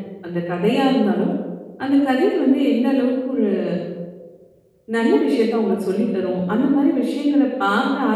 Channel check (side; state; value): both; identical; correlation 1.00